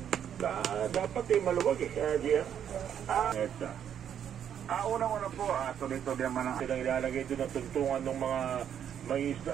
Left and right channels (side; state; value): left; quieter; 9.1 dB